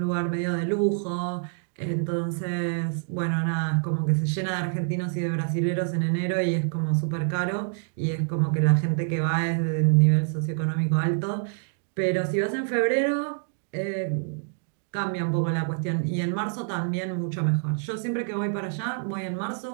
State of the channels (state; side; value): silent; left; 59 dB below the other